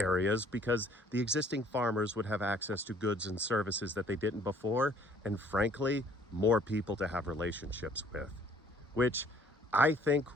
because the existing farmers would have access to goods and services that they didn't before, and frankly, more people to have relationships with, which I think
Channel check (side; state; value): both; normal; correlation 0.57